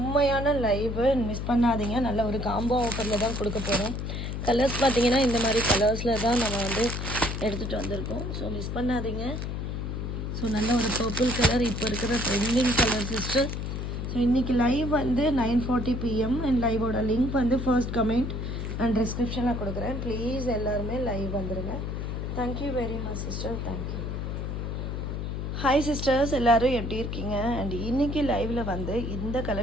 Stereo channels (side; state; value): left; noise; hum, 4 dB below the sound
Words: லைவு, மிஸ் பண்ணாதீங்க. நல்ல ஒரு காம்போ ஆஃபரில் தான் கொடுக்க போகிறோம். கலர்ஸ் பார்த்தீங்கன்னா இந்த மாதிரி கலர்ஸில் தான் நம்ம வந்து எடுத்துகிட்டு வந்திருக்கோம். ஸோ மிஸ் பண்ணாதீங்க. ஸோ நல்ல ஒரு பர்பிள் கலர் இப்போ இருக்கிற ட்ரெண்டிங் கலர் சிஸ்டர். ஸோ இன்றைக்கி லைவ் வந்து 9:40 PM அண்ட் லைவோட லிங்க் வந்து ஃபர்ஸ்ட் கமெண்ட் அண்ட் டிஸ்கிரிப்ஷனில் கொடுக்குறேன். ப்ளீஸ் எல்லாருமே லைவ் வந்துடுங்க. Thank you very much sister, thank you. Hi sisters, எல்லோரும் எப்படி இருக்கீங்க? அண்ட் இன்றைக்கி லைவில் வந்து இந்த